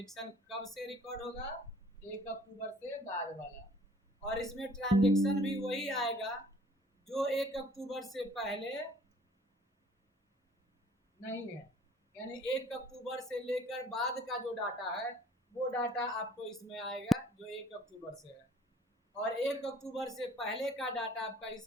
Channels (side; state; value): both; normal; correlation 0.54